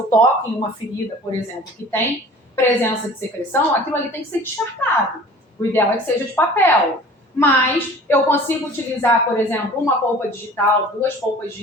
toco em uma ferida, por exemplo, que tem presença de secreção, aquilo ali tem que ser descartado. O ideal é que seja de papel. mas eu consigo utilizar, por exemplo, uma polpa digital, 2 polpas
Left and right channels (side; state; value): both; normal; correlation 0.45